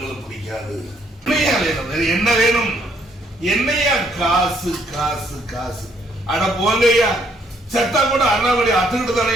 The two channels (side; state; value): both; normal; correlation 0.69